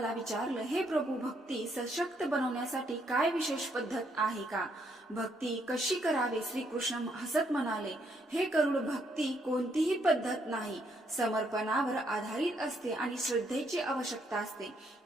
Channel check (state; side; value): normal; both; correlation 0.73